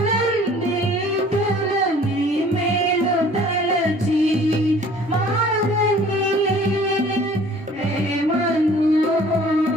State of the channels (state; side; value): normal; both; correlation 0.52